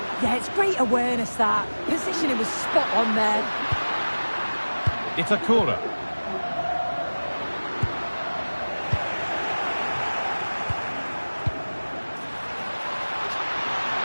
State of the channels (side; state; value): both; inverted; correlation -1.00